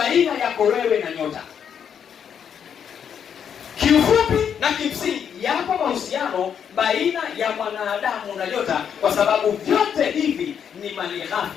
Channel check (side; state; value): right; quieter; 8.0 dB